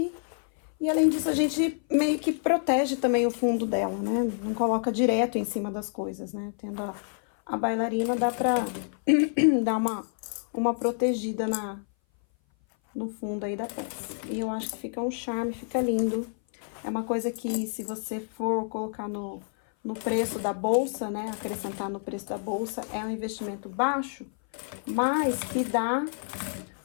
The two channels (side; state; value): right; silent; 57 dB below the other